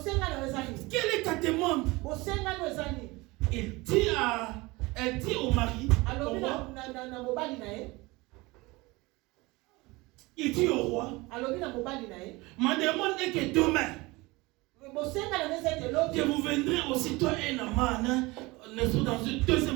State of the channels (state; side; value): quieter; left; 22.8 dB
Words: Quelle est ta demande? Elle dit au mari, il dit au roi, ma demande est que demain, que vous viendrez aussitôt et Naman, dans le